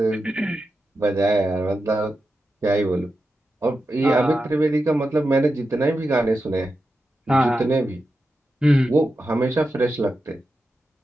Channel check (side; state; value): both; normal; correlation 0.89